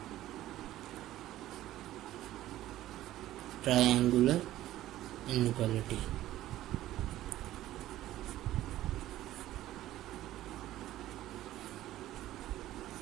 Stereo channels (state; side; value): quieter; left; 14.3 dB